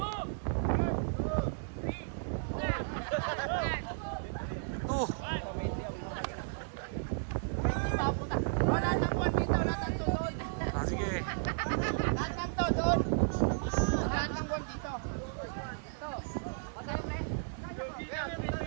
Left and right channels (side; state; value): left; silent; 55 dB below the other